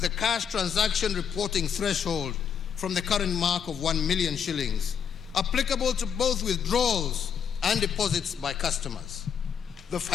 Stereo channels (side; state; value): right; quieter; 7.6 dB